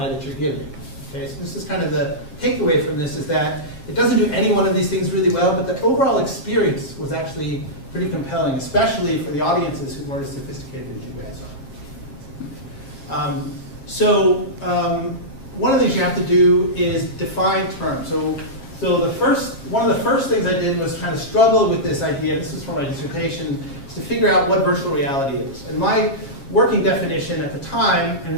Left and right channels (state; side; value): late; right; 7.4 ms